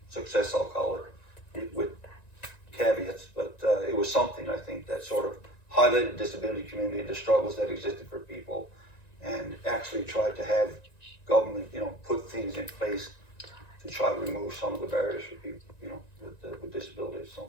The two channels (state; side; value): late; right; 1.9 ms